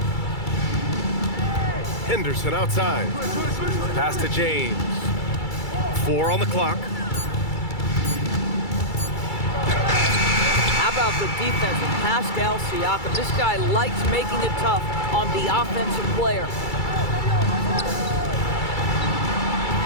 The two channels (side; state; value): right; late; 2.3 ms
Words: Henderson outside. Pass to James. 4 on the clock. How about the defense of Pascal Siakam? This guy likes making it tough on the offensive player.